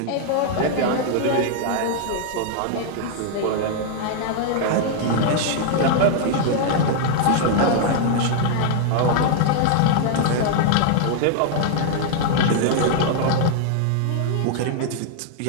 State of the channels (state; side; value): different; both; correlation -0.01